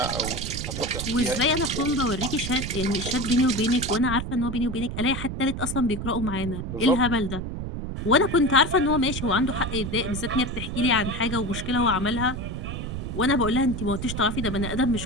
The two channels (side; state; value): right; noise; rumble, 5 dB below the sound